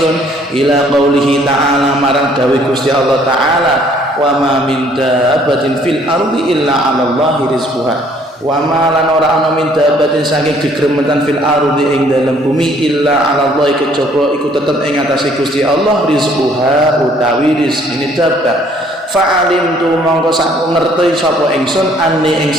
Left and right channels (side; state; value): both; normal; correlation 0.61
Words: ila qaulihi ta'ala marang dawuh Gusti Allah taala wa ma min dabbatin fil ardi illa 'ala Allahi rizquha wa ma lan ora ana min dabbatin saking gegremetan fil ardi ing dalem bumi illa 'ala Allah kejaba iku tetep ing atase Gusti Allah rizquha utawi rezekine dabbah fa'alim tu mongko sak ngerti sapa ingsun ane ing